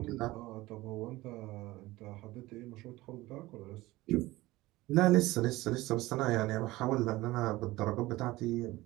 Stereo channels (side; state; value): left; quieter; 18.9 dB